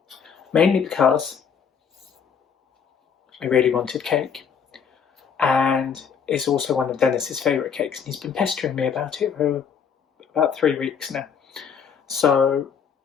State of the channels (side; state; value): right; quieter; 7.0 dB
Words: mainly because I really wanted cake, and it's also one of Dennis's favourite cakes, and he's been pestering me about it for about 3 weeks now. So